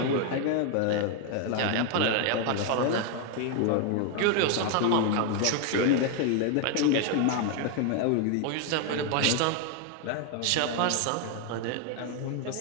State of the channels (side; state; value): both; different; correlation 0.01